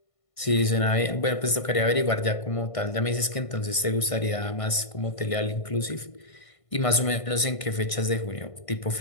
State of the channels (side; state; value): right; late; 1.5 ms